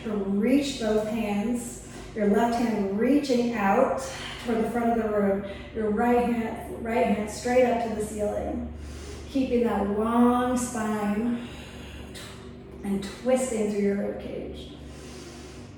to reach both hands. Your left hand reaching out toward the front of the room. Your right hand straight up to the ceiling. Keeping that long spine and twisting through your rib cage.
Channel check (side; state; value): both; identical; correlation 1.00